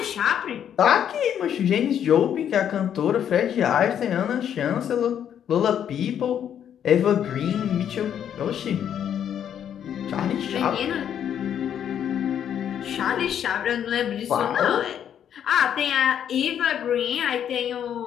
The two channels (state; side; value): quieter; right; 9.3 dB